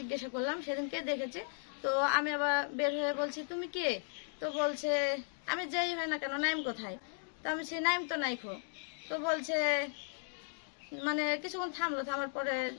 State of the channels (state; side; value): silent; right; digital silence